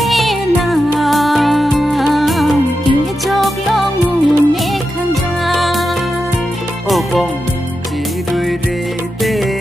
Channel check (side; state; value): both; normal; correlation 0.88